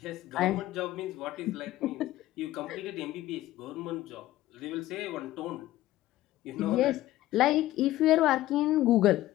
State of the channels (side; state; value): right; quieter; 15.4 dB